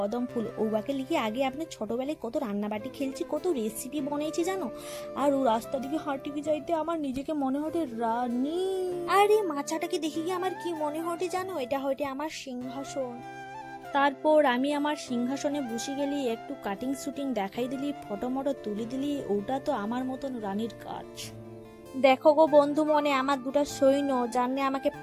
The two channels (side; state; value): both; identical; correlation 1.00